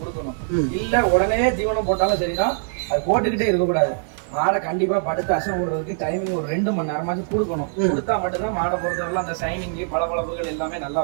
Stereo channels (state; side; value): silent; left; 64 dB below the other